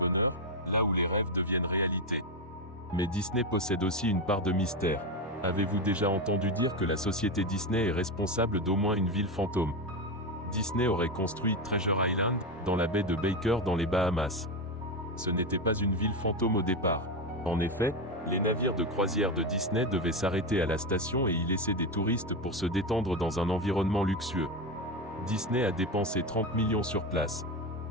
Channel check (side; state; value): both; normal; correlation 0.14